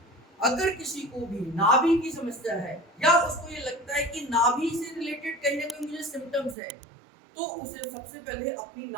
अगर किसी को भी नाभि की समस्या है या उसको ये लगता है कि नाभि से रिलेटेड कहीं ना कहीं मुझे सिम्टम्स है तो उसे सबसे पहले अपनी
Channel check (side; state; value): left; drops out; at 6.6 s